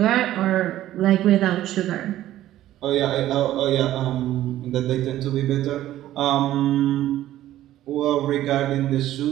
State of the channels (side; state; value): left; quieter; 13.7 dB